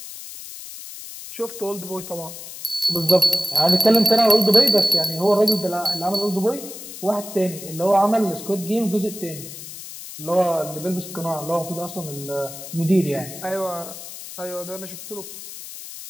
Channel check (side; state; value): left; noise; hiss, 12 dB below the sound